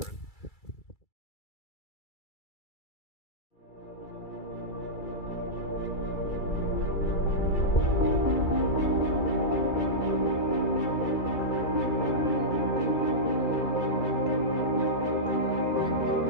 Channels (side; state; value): right; late; 2.3 ms